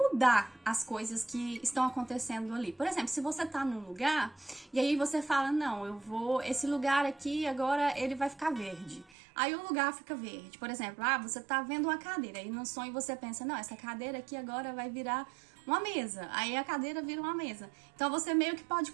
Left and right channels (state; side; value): drops out; left; at 9.2 s